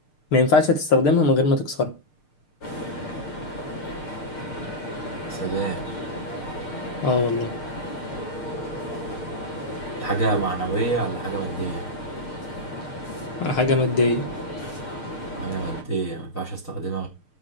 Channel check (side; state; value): right; late; 6.6 ms